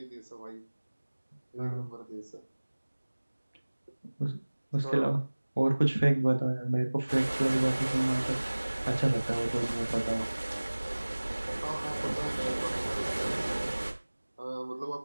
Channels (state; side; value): inverted; both; correlation -1.00